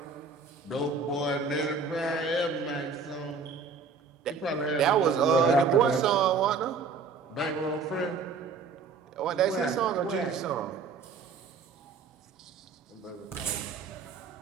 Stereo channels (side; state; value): left; quieter; 4.9 dB